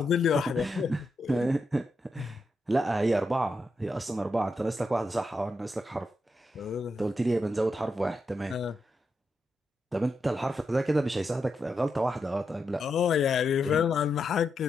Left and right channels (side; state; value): both; normal; correlation 0.85